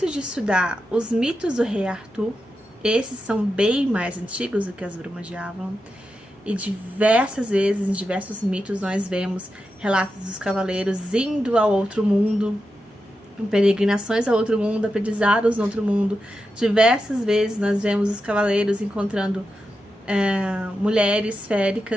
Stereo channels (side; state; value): both; normal; correlation 0.89